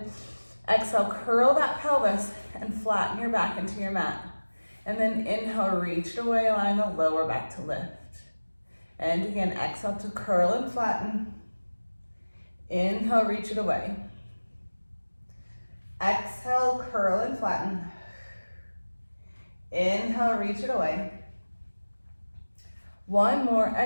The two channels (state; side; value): inverted; both; correlation -1.00